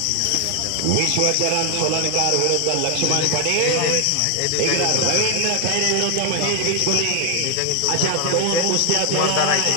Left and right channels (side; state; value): both; different; correlation 0.01